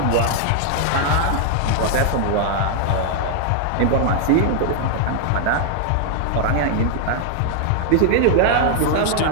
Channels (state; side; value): different; both; correlation 0.00